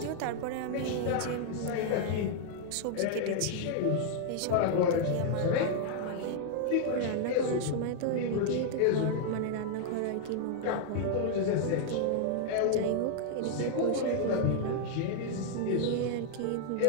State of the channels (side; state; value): both; different; correlation -0.01